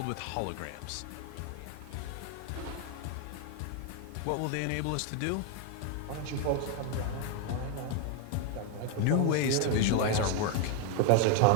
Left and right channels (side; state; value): both; different; correlation 0.01